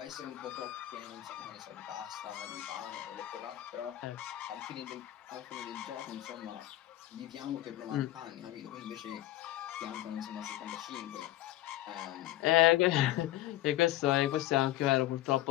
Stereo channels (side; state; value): right; quieter; 15.0 dB